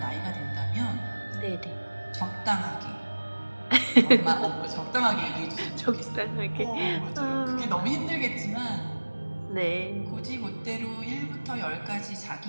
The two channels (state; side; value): inverted; both; correlation -1.00